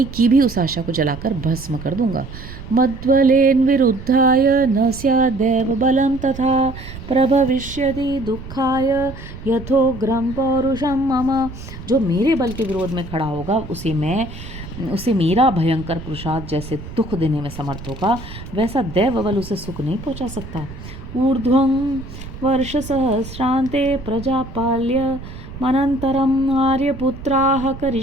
की भी उस आशा को जलाकर भस्म कर दूंगा। मद्बलेन विरुद्धाय न स्यादेव बलम तथा प्रभविष्यति दुःखाय यथोग्रम पौरुषम मम। जो मेरे बल के विरोध में खड़ा होगा उसे मेरा भयंकर पुरुषार्थ जैसे दुख देने में समर्थ होगा, वैसा दैव बल उसे सुख नहीं पहुंचा सकता। ऊर्ध्वं वर्ष सहस्रांते प्रजापाल्य मनंतरम आर्यपुत्राः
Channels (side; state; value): right; noise; rumble, 13 dB below the sound